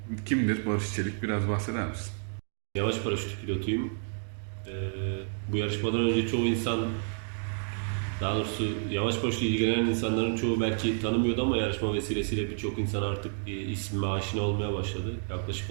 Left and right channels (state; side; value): silent; left; digital silence